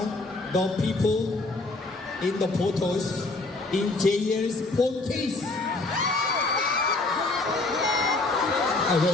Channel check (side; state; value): right; quieter; 3.2 dB